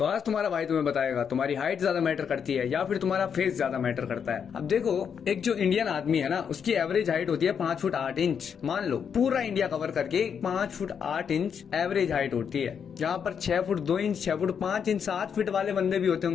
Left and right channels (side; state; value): right; quieter; 7.3 dB